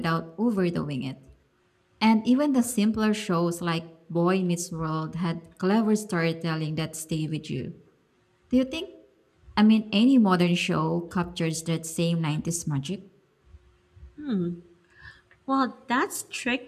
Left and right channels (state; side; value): identical; both; correlation 1.00